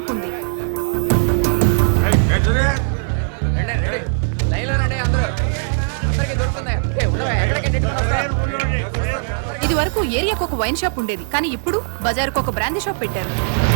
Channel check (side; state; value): left; silent; 66 dB below the other